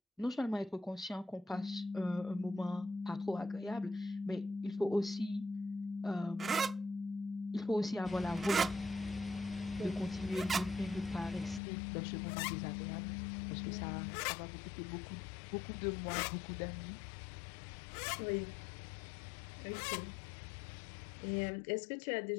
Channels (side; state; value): right; drops out; at 11.6 s